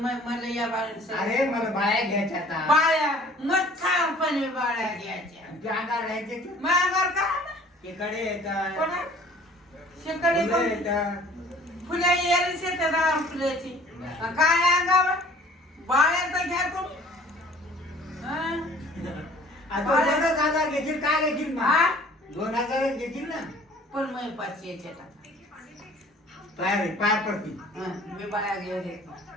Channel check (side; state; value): both; normal; correlation 0.52